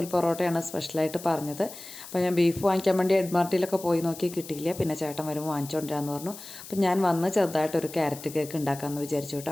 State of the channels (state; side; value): noise; left; hiss, 14 dB below the sound